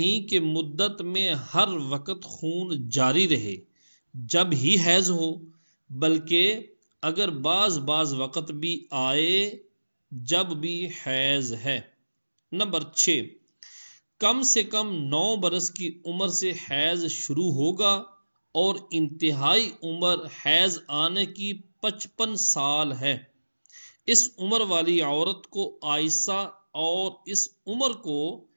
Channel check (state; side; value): inverted; both; correlation -1.00